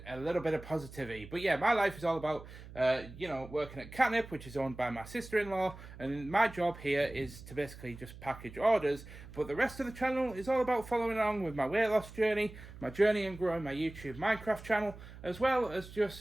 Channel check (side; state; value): right; noise; hum, 16 dB below the sound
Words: a little bit of positivity. But yeah, my life is all about, working at Katnipp, which is owned by my sister-in-law, and my job here is to basically just package orders. But the rest of the channel is all about following along with my weight loss journey, my journey in growing my YouTube Minecraft channel, as well as